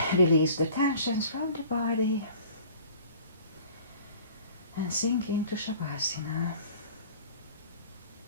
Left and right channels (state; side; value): inverted; both; correlation -0.47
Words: release the tensions from the body. And sink into Shavasana.